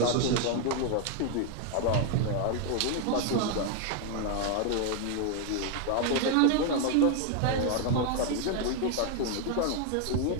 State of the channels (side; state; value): both; different; correlation 0.01